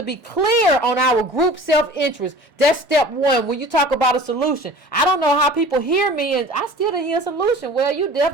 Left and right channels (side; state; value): both; normal; correlation 0.43